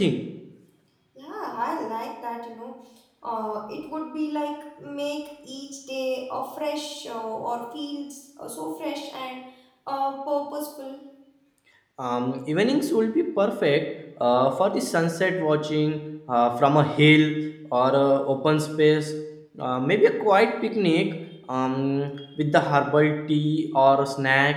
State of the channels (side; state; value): both; identical; correlation 1.00